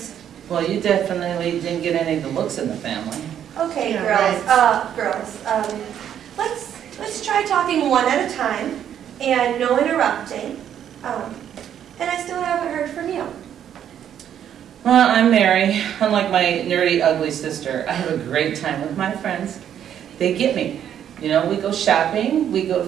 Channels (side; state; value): left; quieter; 9.7 dB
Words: Well, you definitely didn't get any of the looks in the family. Okay, yeah, girls. Let's try talking one at a time and no interrupting. And I still haven't heard from you. Well, I'm Mary. Unlike my nerdy, ugly sister, I have a great time with my friends. They get me. You know, we go shopping, we go